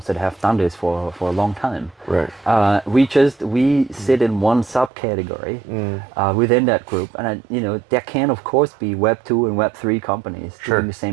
that have done this for a long time. Right. We sit in one subcategory within that group, and there can of course be Web 2 and Web 3 companies doing the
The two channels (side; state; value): left; drops out; at 4.9 s